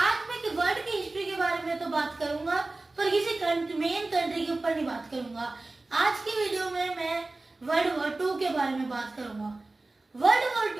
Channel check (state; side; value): quieter; left; 3.1 dB